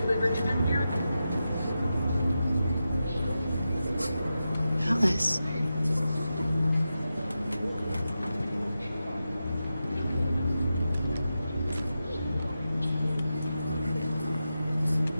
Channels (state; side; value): inverted; both; correlation -0.90